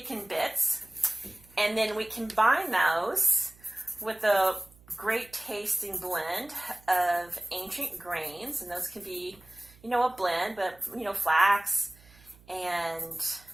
bits. And then we combine those with a great tasting blend of ancient grains, and those can be, a blend, but, flax and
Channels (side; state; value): right; noise; hum, 26 dB below the sound